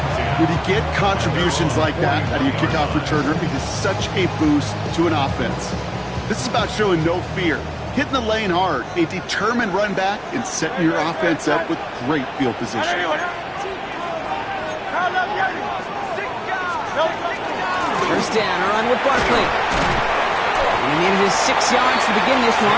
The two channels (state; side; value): identical; both; correlation 1.00